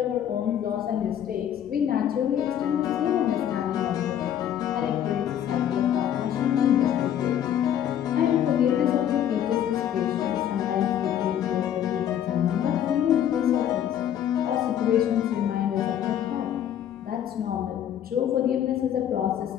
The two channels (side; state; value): right; quieter; 10.2 dB